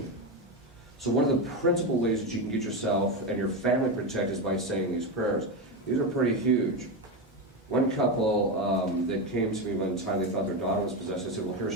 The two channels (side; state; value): both; normal; correlation 0.14